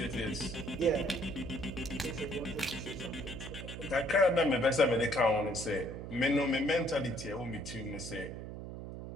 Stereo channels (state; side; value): noise; right; hum, 9 dB below the sound